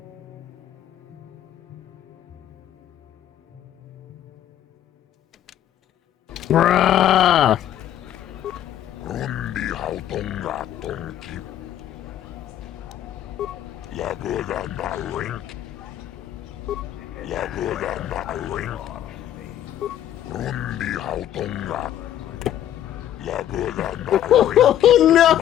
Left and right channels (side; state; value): right; quieter; 11.5 dB